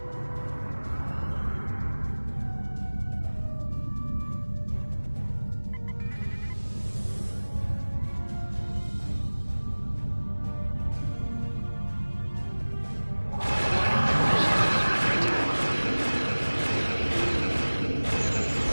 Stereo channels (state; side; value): inverted; both; correlation -1.00